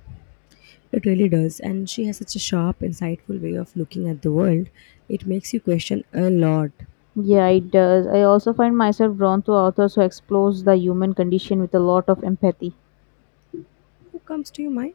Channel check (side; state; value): right; silent; 66 dB below the other